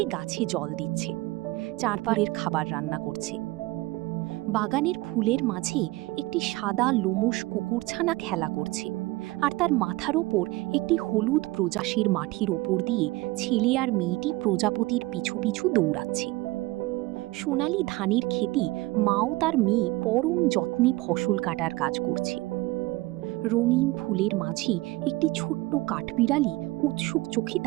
গাছে জল দিচ্ছে, চারপাড়ের খাবার রান্না করছে। বাগানের ফুলের মাঝে একটি সাদা লোমশ কুকুরছানা খেলা করছে, আর তার মাথার ওপর একটি হলুদ প্রজাশীর মাটির ওপর দিয়ে ছেলে আর মেয়েটি প্রজাপতির পিছু পিছু দৌড়াচ্ছে। সোনালি ধানের খেতে মাও তার মেয়ে পরম যত্নে ফসল কাটার কাজ করছে। রঙিন ফুলের মাঝে একটি ছোট্ট কাঠবিড়ালি উৎসুক চোখে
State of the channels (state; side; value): quieter; left; 20.9 dB